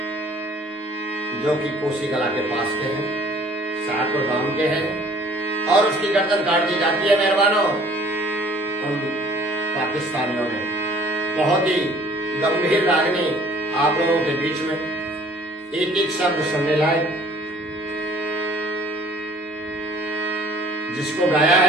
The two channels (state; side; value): normal; both; correlation 0.55